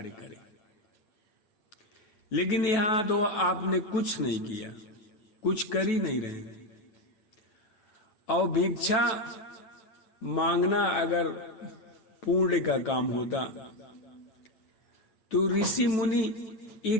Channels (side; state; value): right; late; 9.1 ms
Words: करें। लेकिन यहां तो आपने कुछ नहीं किया, कुछ कर ही नहीं रहे। और भिक्षा मांगना अगर पुण्य का काम होता तो ऋषि मुनि